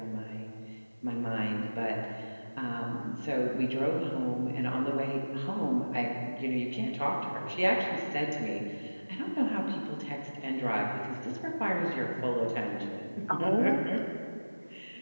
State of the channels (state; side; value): inverted; both; correlation -1.00